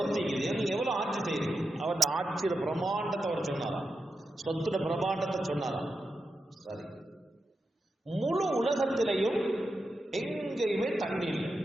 இருக்குது, நீங்க எவ்வளவு ஆட்சி செய்றீங்க? அவருடைய ஆட்சியோட பிரமாண்டத்தை அவர் சொன்னாராம், சொத்துட பிரமாண்டத்தை சொன்னாராம். சரி, முழு உலகத்திலையும் எங்கேயுமே தண்ணி இல்லை,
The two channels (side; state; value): both; normal; correlation 0.88